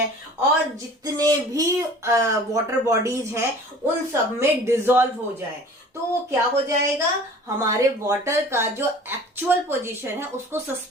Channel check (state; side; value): normal; both; correlation 0.45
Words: और जितने भी वाटर बॉडीज हैं उन सब में डिसॉल्व हो जाए, तो वो क्या हो जाएगा, हमारे वाटर का जो एक्चुअल पोजीशन है उसको